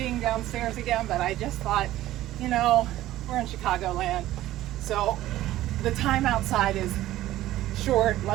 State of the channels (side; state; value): left; quieter; 14.8 dB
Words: downstairs again, but I just thought, you know, we're in Chicagoland, so the time outside is short.